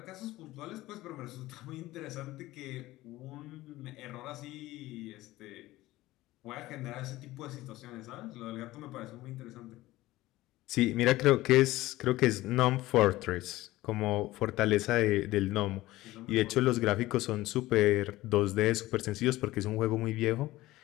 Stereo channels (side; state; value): right; quieter; 17.4 dB